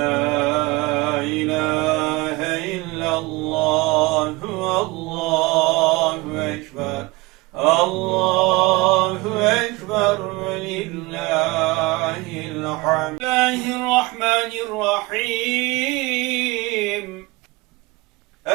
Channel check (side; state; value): left; quieter; 22.8 dB